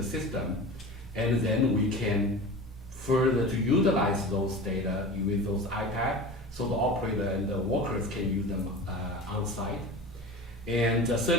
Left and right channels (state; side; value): normal; both; correlation 0.33